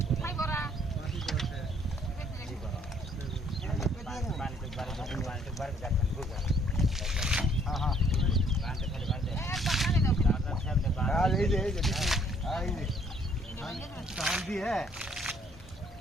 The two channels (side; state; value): both; normal; correlation 0.63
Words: খাই বড়া পানি তো বাড়ি যাচ্ছেন বুঝা হ্যাঁ হ্যাঁ পানি খালি বাড়ি এক বানালে দাও দাদা সামনে আর এই যে এই যে ধান দিয়ে